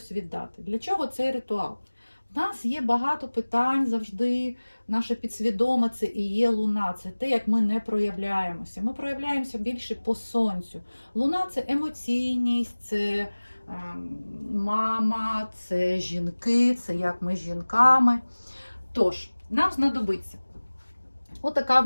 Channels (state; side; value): inverted; both; correlation -1.00